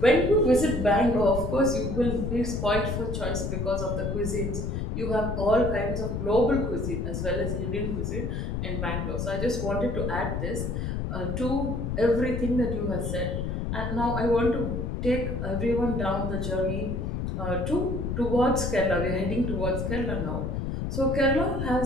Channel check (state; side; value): noise; left; rumble, 2 dB below the sound